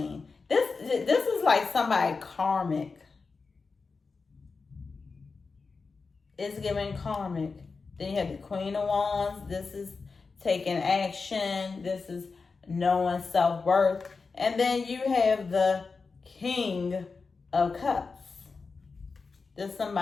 This is like somebody karmic. It's giving karmic. Then you have the Queen of Wands. This is taking action. This is knowing self-worth. And then you have the King of Cups. There's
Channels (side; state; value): right; quieter; 4.5 dB